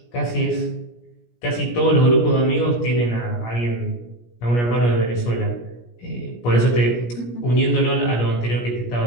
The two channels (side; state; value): right; late; 17 ms